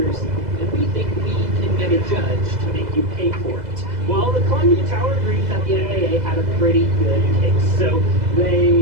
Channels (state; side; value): late; left; 2.0 ms